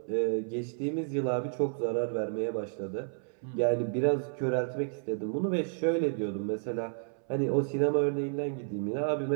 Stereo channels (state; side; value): silent; left; 57 dB below the other